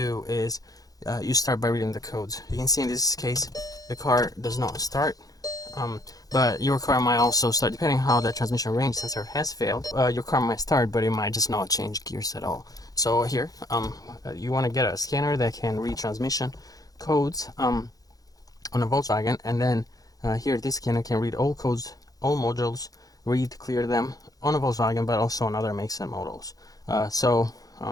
is you start by reading the codes. You can see in this case the car does not start, but your car might also start, depending on how the transmission range sensor has failed. Your car might start, but it might just not change gears at all. So here, you want to get a scanner that can read transmission codes on a Volkswagen, and then here this scanner can read all codes, all modules, clear them on a Volkswagen, but also on other makes and models.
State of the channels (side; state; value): right; late; 0.18 ms